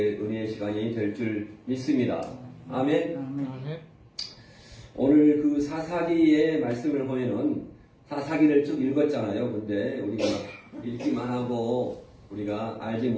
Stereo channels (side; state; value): both; identical; correlation 1.00